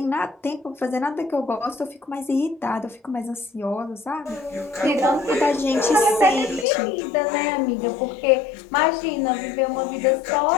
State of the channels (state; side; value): drops out; right; at 6.7 s